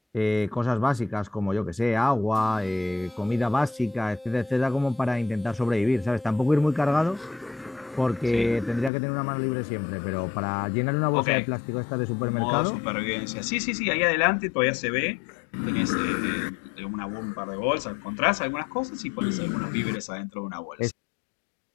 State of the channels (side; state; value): right; drops out; at 8.9 s